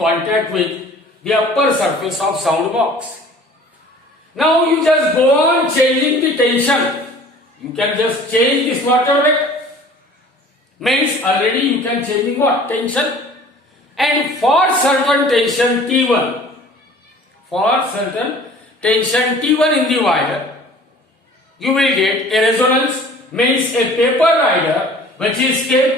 with the upper surface of sound box. Now you just go on changing the tension. You can just change the slaughter rate. Means already you can change what? Tension. And for certain tension T1, in the wire, you will get a resonance, means a paper rider which is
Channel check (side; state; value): both; normal; correlation 0.47